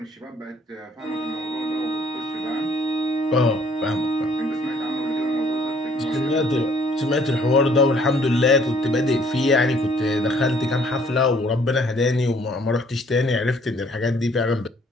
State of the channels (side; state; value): both; normal; correlation 0.61